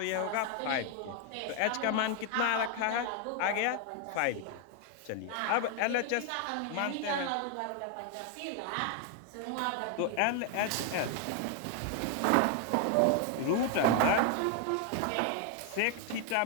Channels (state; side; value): different; both; correlation 0.00